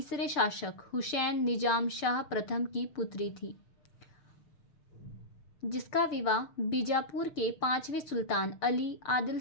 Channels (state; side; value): late; right; 6.8 ms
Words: शासक हुसैन निजाम शाह प्रथम की पुत्री थी, जिसका विवाह बीजापुर के 5वें सुल्तान अली आदिल